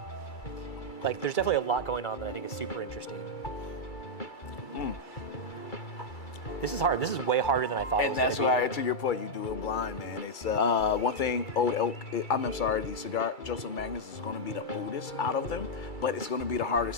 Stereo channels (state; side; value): late; right; 2.3 ms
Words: Like, there's definitely a lot going on that I think is super interesting. This is hard. This is way harder than I thought it was. And that's why, to your point, you do it blind, man. It's one thing. Old Elk. The cigar. Joseph Magus is going to be the oldest out of them, but it's going to be the